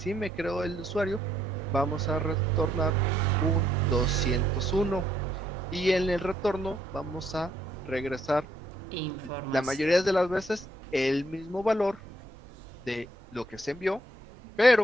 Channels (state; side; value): normal; both; correlation 0.71